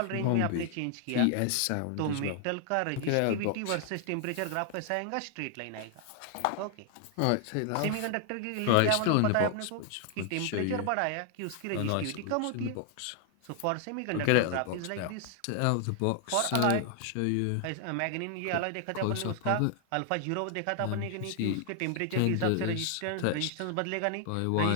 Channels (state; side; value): different; both; correlation 0.00